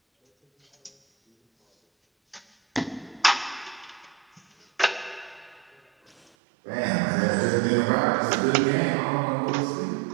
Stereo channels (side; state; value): left; drops out; at 6.3 s